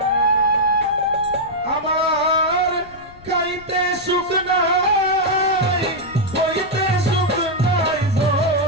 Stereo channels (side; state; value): left; noise; rumble, 22 dB below the sound